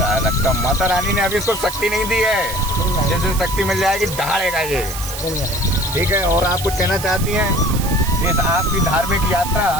है लगता, माता रानी ने अभी इसको शक्ति नहीं दी है, जैसे शक्ति मिल जाएगी दहाड़ेगा ये, ठीक है। और आप कुछ कहना चाहती हैं इस आपकी धार्मिक यात्रा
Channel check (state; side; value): noise; right; hiss, 8 dB below the sound